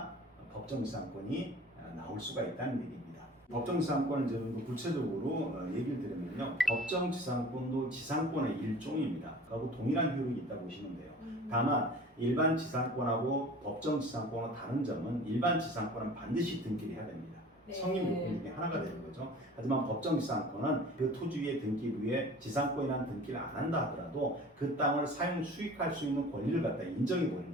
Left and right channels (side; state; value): both; normal; correlation 0.44